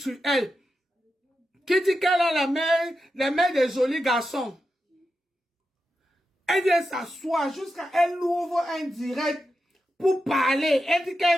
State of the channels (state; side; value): normal; both; correlation 0.89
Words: elle. Qui dit qu'elle a la main des jolis garçons. Elle vient s'asseoir jusqu'à elle ouvre un direct pour parler. Elle dit